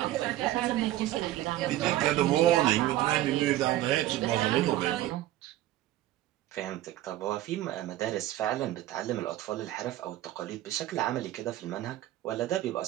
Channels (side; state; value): left; quieter; 14.6 dB